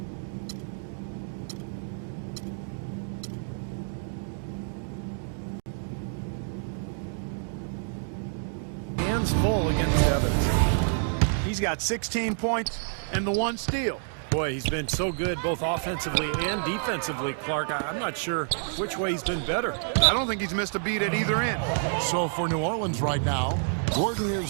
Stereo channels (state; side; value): silent; left; digital silence